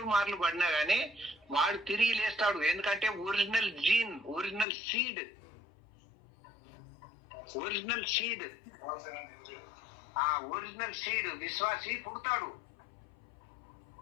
మార్లు పడినా గానీ వాడు తిరిగి లేస్తాడు. ఎందుకంటే original gene, original seed, original seed, ఆ ఒరిజినల్ సీడ్ విశ్వాసి పుడతాడు.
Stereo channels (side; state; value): right; drops out; at 4.7 s